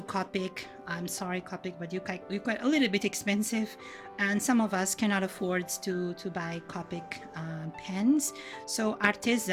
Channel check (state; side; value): identical; both; correlation 1.00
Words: Copic. I'm sorry, Copic, but you're quite a little bit expensive, and some of us cannot afford to buy Copic pens. So